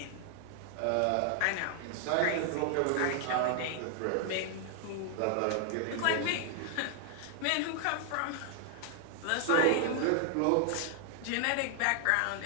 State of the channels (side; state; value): both; different; correlation 0.00